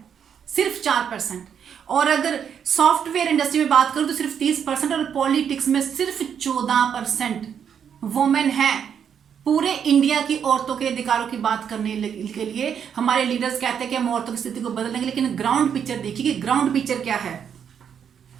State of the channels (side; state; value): left; quieter; 7.9 dB